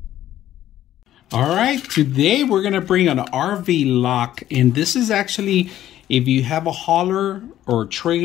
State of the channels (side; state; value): right; quieter; 12.6 dB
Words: All right, today we're gonna bring an RV lock, and this is actually if you have a hauler or